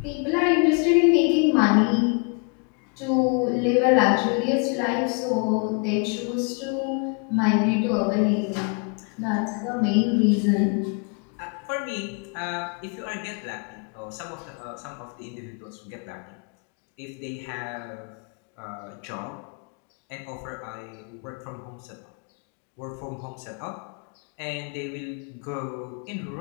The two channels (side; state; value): right; quieter; 35.8 dB